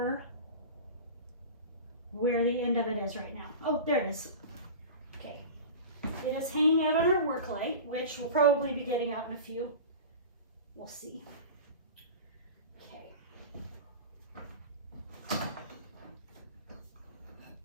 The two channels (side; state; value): both; inverted; correlation -0.33